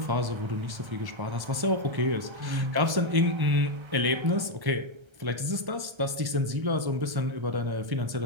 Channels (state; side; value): late; left; 1.1 ms